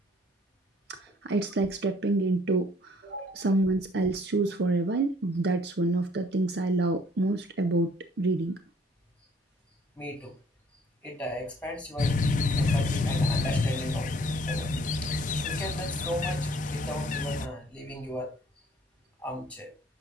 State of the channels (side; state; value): both; normal; correlation 0.59